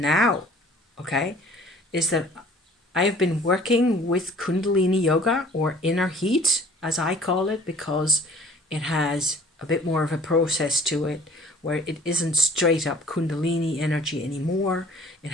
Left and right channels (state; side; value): normal; both; correlation 0.51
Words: okay, is that I have been working with Kundalini Yoga, or inner heat, as I call it, because it has a bit more of a process to it, where it isn't straight up Kundalini energy anymore. It